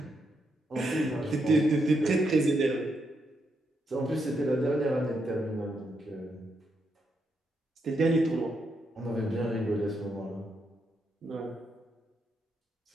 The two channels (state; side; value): normal; both; correlation 0.80